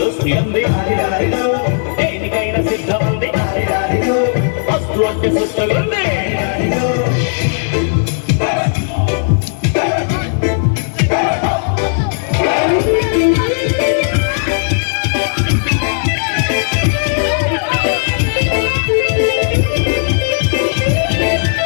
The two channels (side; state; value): right; silent; digital silence